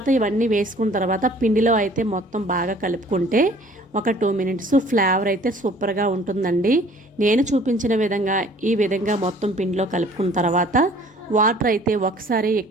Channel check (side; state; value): both; normal; correlation 0.54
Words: ఇవన్నీ వేసుకున్న తర్వాత పిండిలో అయితే మొత్తం బాగా కలుపుకుంటే ఒక 2 మినిట్స్ ఫ్లేవర్ అయితే సూపర్గా ఉంటుందండి. నేను చూపించిన విధంగా ఈ విధంగా మొత్తం పిండిలో కలుపుకున్న తర్వాత వాటర్ అయితే ఒకసారి